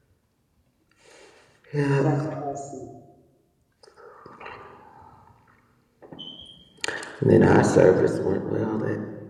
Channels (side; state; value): both; identical; correlation 1.00